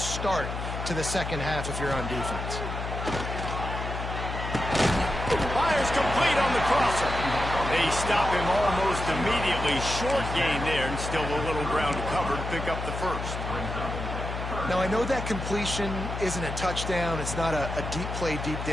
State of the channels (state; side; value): noise; left; hum, 5 dB below the sound